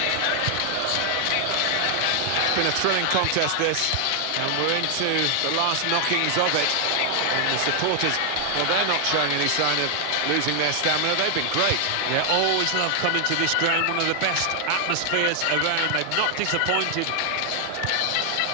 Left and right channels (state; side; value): different; both; correlation 0.00